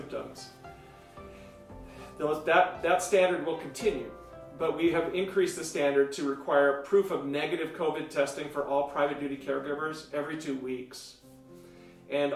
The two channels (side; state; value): both; identical; correlation 1.00